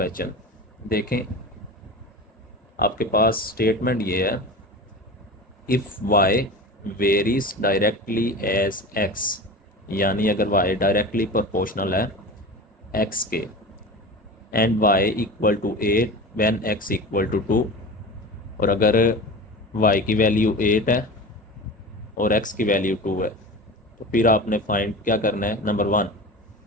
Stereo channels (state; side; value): normal; both; correlation 0.32